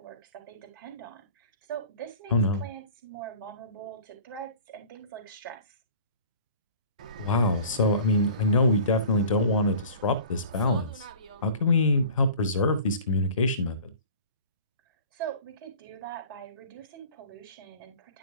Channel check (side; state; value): both; inverted; correlation -0.43